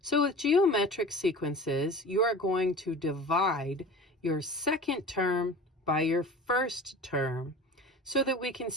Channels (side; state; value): both; normal; correlation 0.38